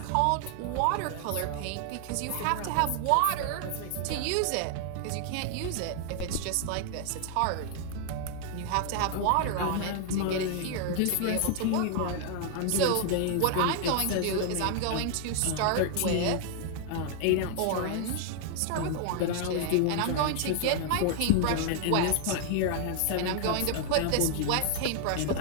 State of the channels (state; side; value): different; both; correlation 0.00